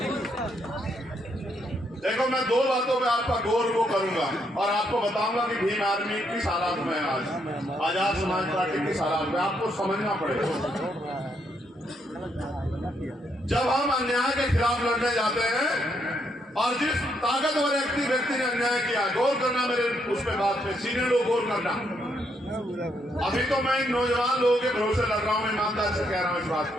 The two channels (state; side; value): normal; both; correlation 0.76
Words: देखो, मैं 2 बातों पे आपका गौर वो करूंगा और आपको बताऊंगा कि भीम आर्मी किस हालात में आज आजाद समाज पार्टी किस हालात में, आपको समझना पड़ेगा। जब हम अन्याय के खिलाफ लड़ने जाते हैं और जिस ताकतवर व्यक्ति ने अन्याय किया, गौर करना मेरे उस पे बात पे, सीनियर लोग गौर करना। अभी तो मैं इन नौजवान लोगों के भरोसे लग रहा हूँ, ईमानदार से कह रहा हूँ इस बात